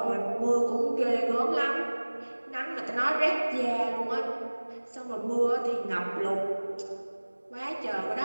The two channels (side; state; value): both; inverted; correlation -1.00